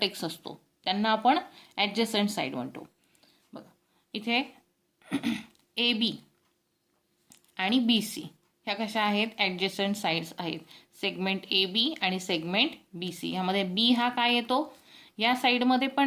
असतो त्यांना आपण ॲडजसंट साइड म्हणतो. बघा इथे ए बी आणि बी सी ह्या कशा आहेत? ॲडजसंट साइड्स आहेत. सेगमेंट ए बी आणि सेगमेंट बी सी. ह्यामध्ये बी हा काय येतो? या साईडमध्ये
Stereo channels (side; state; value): both; identical; correlation 1.00